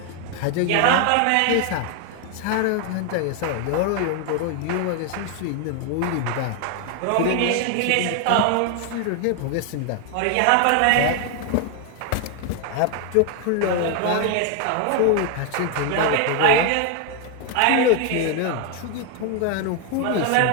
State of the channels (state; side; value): different; both; correlation 0.00